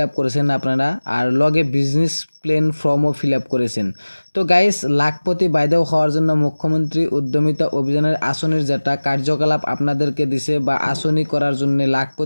আপ করেছেন আপনারা, আর লগে বিজনেস প্ল্যান ফর্মও ফিল আপ করেছেন। তো গাইস, লাখপতি বাইদেও হওয়ার জন্য মুখ্যমন্ত্রী উদ্যমিতা অভিযানের আসনের যেটা কার্যকলাপ আপনাদেরকে দিছে বা আসনি করার জন্য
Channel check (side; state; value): both; inverted; correlation -1.00